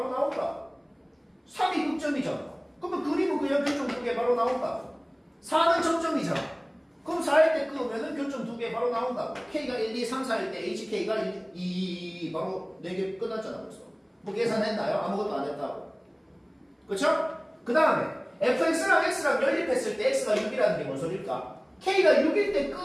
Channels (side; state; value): both; identical; correlation 1.00